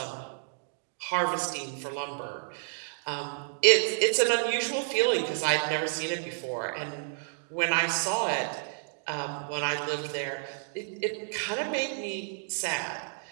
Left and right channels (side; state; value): left; silent; digital silence